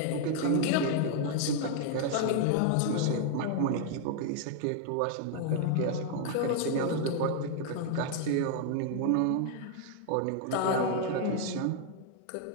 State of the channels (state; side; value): different; both; correlation 0.00